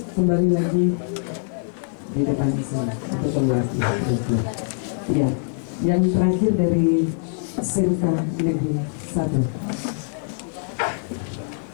kembali lagi di depan sana atau keluar. Ya, yang terakhir dari SMK Negeri 1.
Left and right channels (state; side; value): silent; right; 63 dB below the other